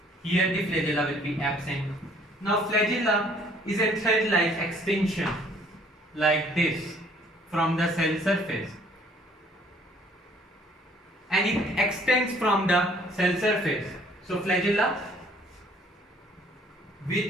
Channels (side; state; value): both; normal; correlation 0.59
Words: here the flagella will be absent. Now flagella is a thread-like extension like this from the cell surface, and it extends from the cell surface. So flagella